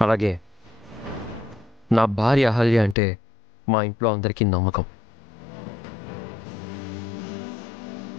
అలాగే నా భార్య అహల్య అంటే మా ఇంట్లో అందరికీ నమ్మకం.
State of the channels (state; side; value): drops out; right; at 3.0 s